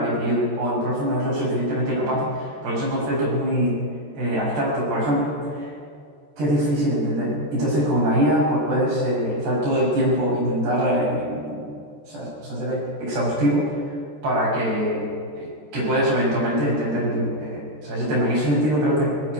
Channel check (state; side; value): late; left; 13 ms